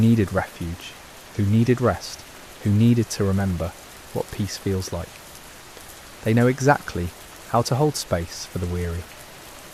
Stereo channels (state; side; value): identical; both; correlation 1.00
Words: refuge, who needed rest, who needed to remember what peace feels like. They know exactly how to hold space for the weary.